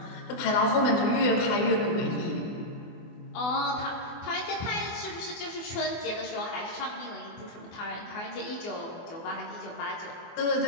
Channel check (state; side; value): late; right; 24 ms